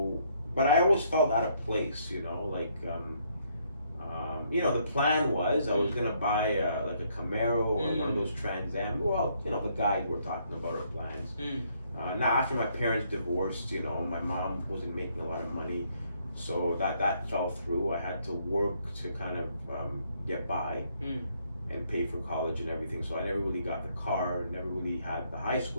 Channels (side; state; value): both; inverted; correlation -0.70